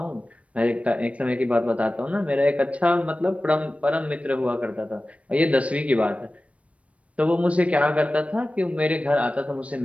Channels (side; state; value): left; late; 0.064 ms